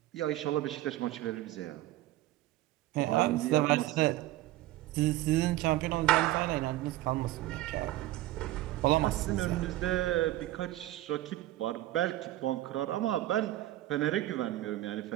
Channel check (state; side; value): quieter; left; 15.7 dB